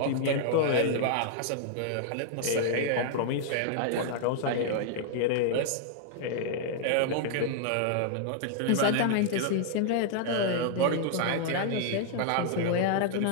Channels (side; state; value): both; different; correlation -0.01